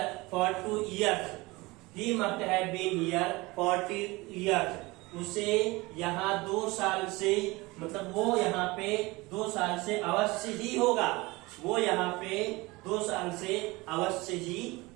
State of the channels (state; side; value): quieter; left; 22.6 dB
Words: for 2 years, he must have been here for 2 years। उसे यहाँ 2 साल से, मतलब वो यहाँ पे 2 साल से अवश्य ही होगा, वो यहाँ पे 2 साल से अवश्य ही